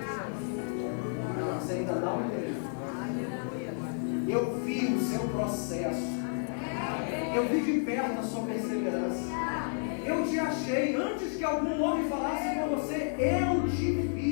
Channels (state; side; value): silent; right; 57 dB below the other